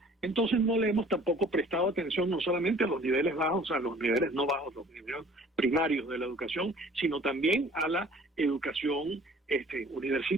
Entonces no le hemos tampoco prestado atención no solamente a los niveles bajos, a los niveles no bajos, los niveles primarios de la educación, sino también a la educación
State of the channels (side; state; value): both; normal; correlation 0.51